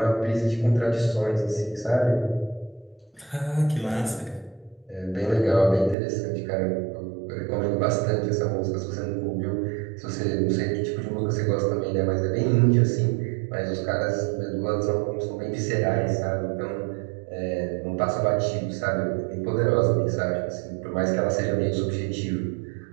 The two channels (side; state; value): left; drops out; at 6.0 s